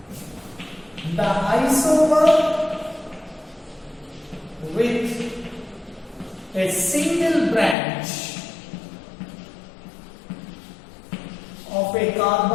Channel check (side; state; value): right; drops out; at 7.8 s